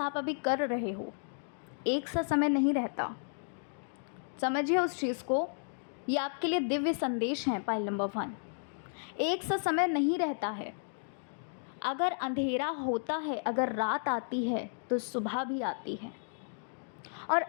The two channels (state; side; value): silent; right; digital silence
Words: अभी कर रहे हो, एक सा समय नहीं रहता। समझिए उस चीज़ को, ये आपके लिए दिव्य संदेश है। पाइल नंबर 1, एक सा समय नहीं रहता है। अगर अंधेरा होता है, अगर रात आती है तो सुबह भी आती है। और